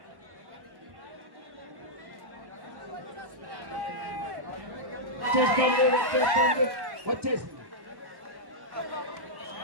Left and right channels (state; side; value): late; left; 1.1 ms